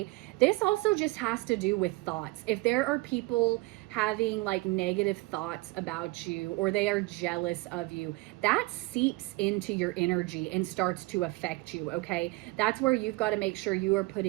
this also just has to do with thoughts. If there are people having like negative thoughts about you or they are jealous of you, that seeps into your energy and starts to affect you, okay? That's where you've got to make sure you are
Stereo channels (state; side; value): quieter; left; 23.0 dB